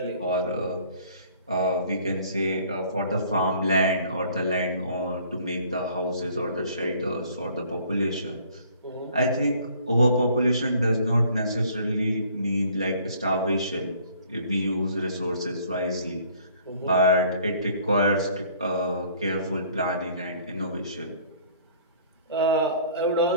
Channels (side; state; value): both; inverted; correlation -0.56